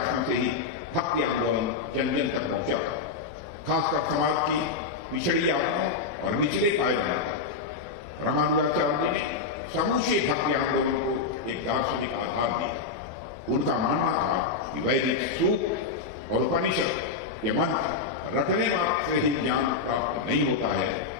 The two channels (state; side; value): quieter; right; 4.7 dB